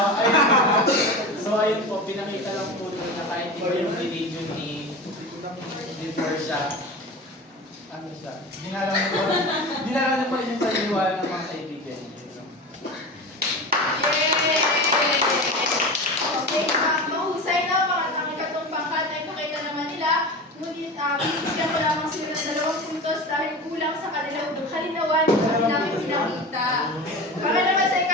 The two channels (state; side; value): normal; both; correlation 0.29